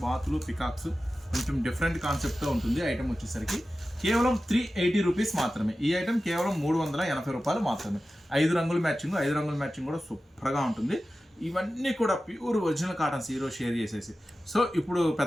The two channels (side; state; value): both; normal; correlation 0.94